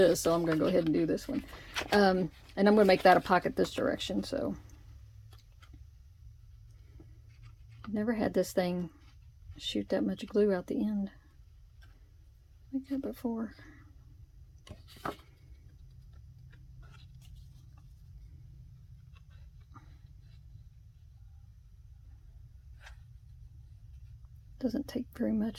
so I'm going to go ahead and do this one. And I'm going to make that a pocket this direction, so. I've never had this thing shoot that much glue out the end like that before. Doesn't take very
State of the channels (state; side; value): identical; both; correlation 1.00